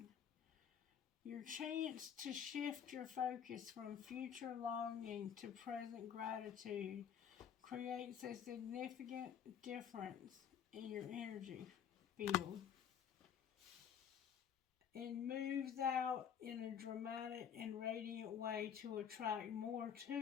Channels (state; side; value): quieter; right; 8.3 dB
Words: Your chance to shift your focus from future longing to present gratitude creates a significant difference in your energy field and moves out in a dramatic and radiant way to attract more to